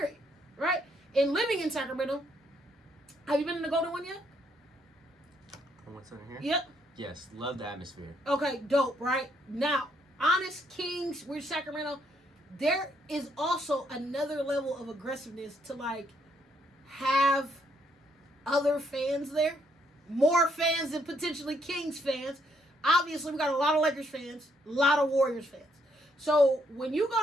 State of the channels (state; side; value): normal; both; correlation 0.72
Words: Right? And living in Sacramento, have you been in the Golden one yet? What's in here? Yep. Yes, love the atmosphere. Okay, dope, right? Now, Honest Kings, we're Sacramento. There is also another level of aggressiveness to, like, have other fans there. More fans than potentially Kings fans. Obviously, we got a lot of Lakers fans, a lot of Warriors fans. So, when you